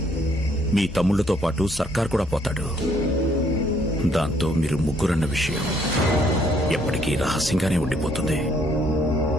మీ తమ్ముళ్లతో పాటు సర్కార్ కూడా పోతాడు. దాంతో మీరు ముగ్గురన్న విషయం ఎప్పటికీ రహస్యంగానే ఉండిపోతుంది.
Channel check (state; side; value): normal; both; correlation 0.67